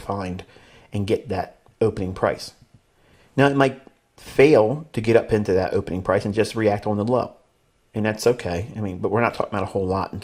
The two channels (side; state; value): both; identical; correlation 1.00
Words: and get that opening price. Now, it might fail to get up into that opening price and just react on the low, and that's okay. I mean, but we're not talking about a whole lot in